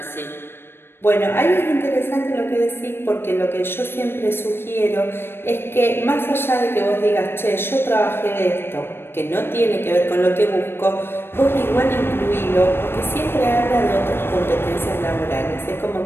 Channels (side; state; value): right; late; 0.11 ms